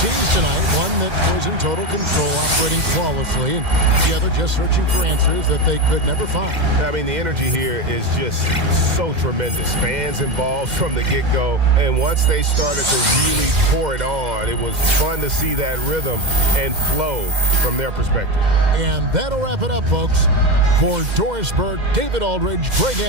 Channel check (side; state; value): left; late; 2.1 ms